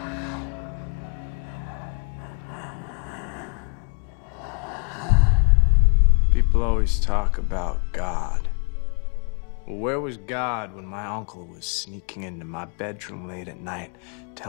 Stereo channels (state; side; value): quieter; right; 38.9 dB